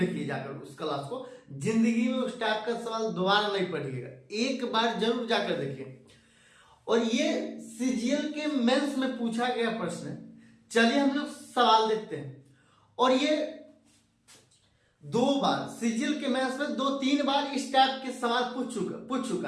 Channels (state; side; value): identical; both; correlation 1.00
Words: जाकर उस क्लास को। जिंदगी में उस टाइप का सवाल दोबारा नहीं पढ़िएगा, एक बार जरूर जाकर देखिए। और ये CGL के मेंस में पूछा गया प्रश्न है। चलिए हम लोग सवाल देखते हैं। और ये 2 बार CGL के मेंस में 2-3 बार इस टाइप के सवाल पूछ